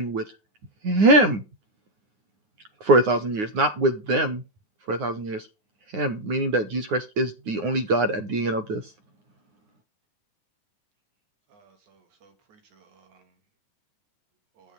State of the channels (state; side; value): late; left; 9.6 ms